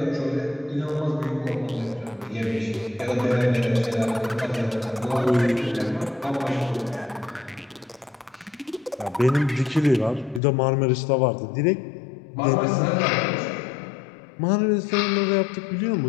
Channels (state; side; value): drops out; right; at 10.4 s